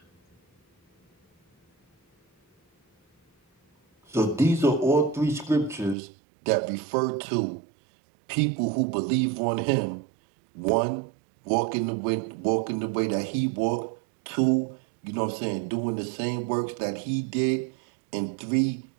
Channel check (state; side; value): drops out; left; at 6.0 s